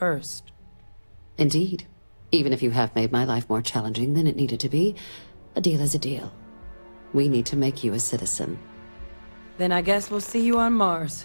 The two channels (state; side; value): inverted; both; correlation -1.00